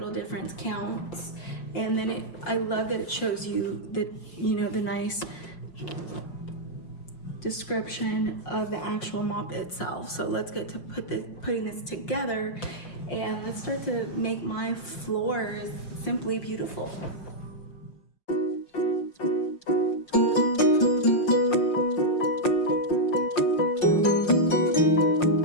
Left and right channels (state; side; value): late; right; 5.6 ms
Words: difference counts. And then I love that it shows you the nice description of the actual mop itself. So let's get to putting this together, and let's start to make my floors simply beautiful.